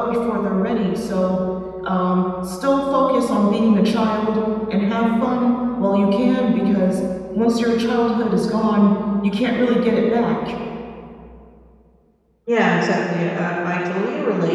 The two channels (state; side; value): identical; both; correlation 1.00